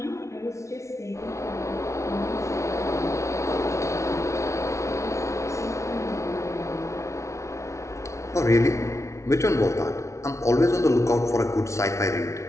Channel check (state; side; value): late; right; 0.14 ms